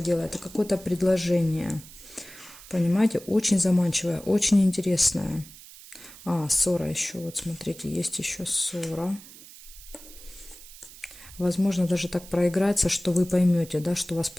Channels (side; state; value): right; noise; hiss, 18 dB below the sound